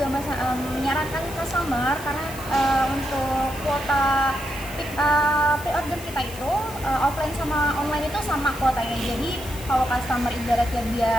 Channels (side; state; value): left; noise; hiss, 14 dB below the sound